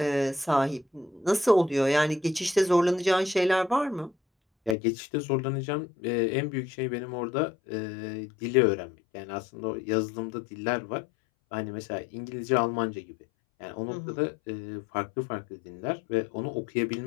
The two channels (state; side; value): drops out; right; at 4.8 s